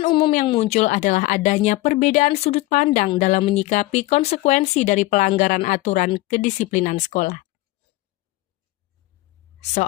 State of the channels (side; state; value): right; quieter; 18.9 dB